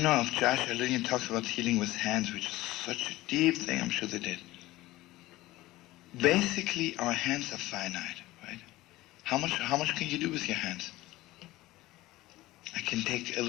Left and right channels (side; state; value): right; quieter; 17.9 dB